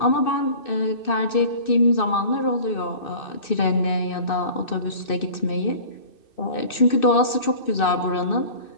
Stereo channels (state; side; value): late; right; 2.6 ms